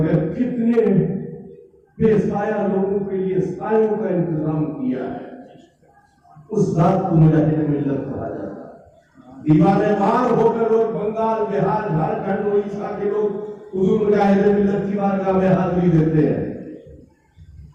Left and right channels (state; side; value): identical; both; correlation 1.00